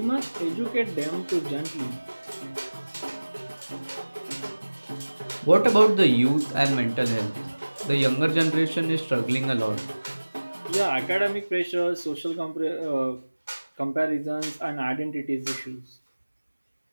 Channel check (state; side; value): inverted; both; correlation -1.00